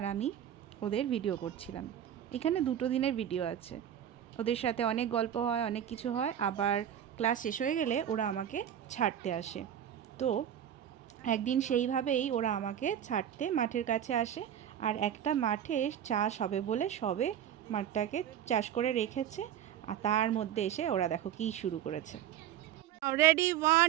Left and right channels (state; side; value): quieter; left; 10.1 dB